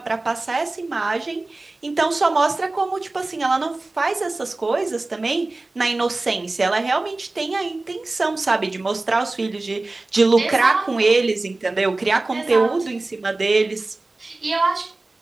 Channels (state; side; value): quieter; left; 3.1 dB